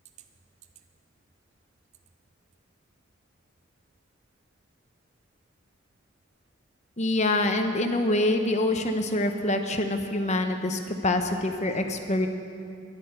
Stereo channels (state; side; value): normal; both; correlation 0.39